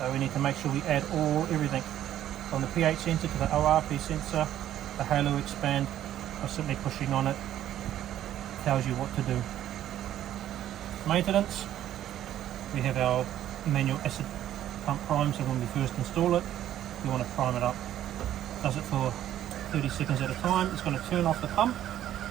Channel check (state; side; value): quieter; left; 11.9 dB